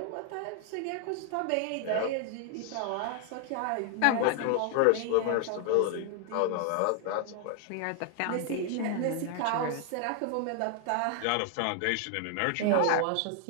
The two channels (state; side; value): different; both; correlation 0.00